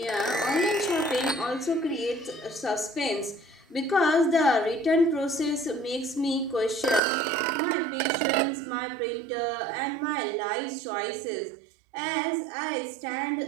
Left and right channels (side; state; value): left; drops out; at 7.0 s